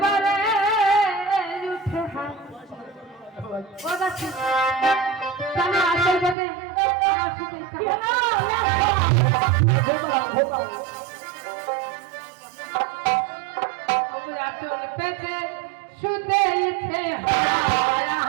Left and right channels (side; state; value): left; drops out; at 6.4 s